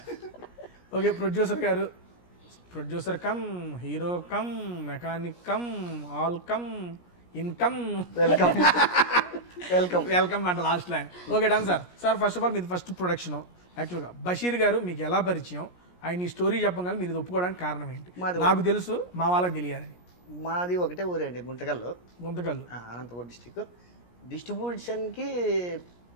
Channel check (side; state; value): right; late; 17 ms